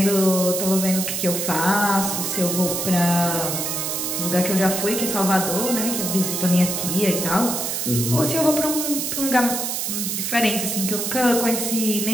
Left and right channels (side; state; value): right; noise; hiss, 2 dB below the sound